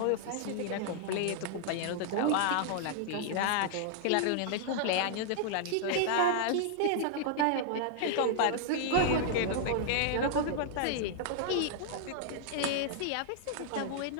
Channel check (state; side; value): different; both; correlation -0.01